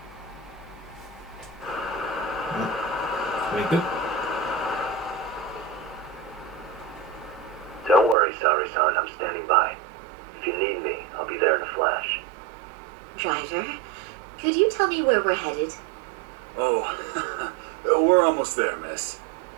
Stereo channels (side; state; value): left; drops out; at 8.2 s